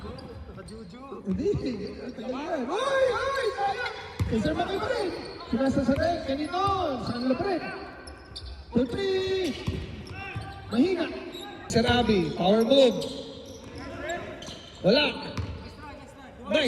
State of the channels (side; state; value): both; identical; correlation 1.00